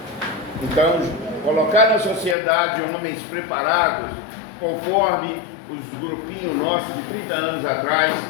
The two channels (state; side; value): drops out; right; at 2.4 s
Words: Então, colocar na sociedade homens preparados, conforme os grupinhos nossos de 30 anos atrás,